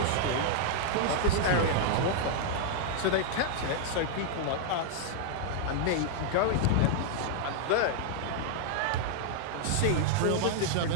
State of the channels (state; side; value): different; both; correlation -0.01